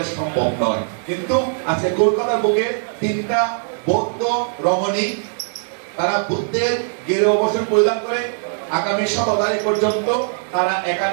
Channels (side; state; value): left; silent; digital silence